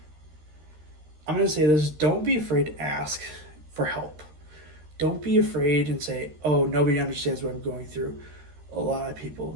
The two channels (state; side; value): late; left; 13 ms